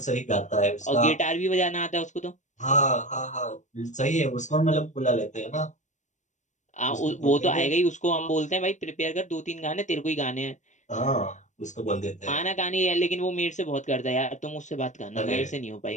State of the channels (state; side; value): late; right; 0.35 ms